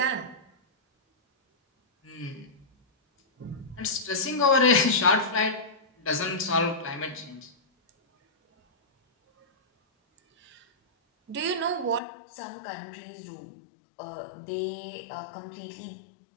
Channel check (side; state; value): right; drops out; at 12.0 s